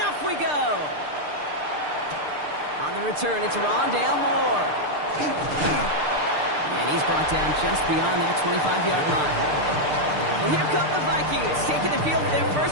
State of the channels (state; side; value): late; left; 6.7 ms